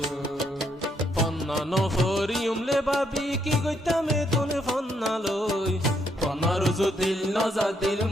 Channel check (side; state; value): both; normal; correlation 0.74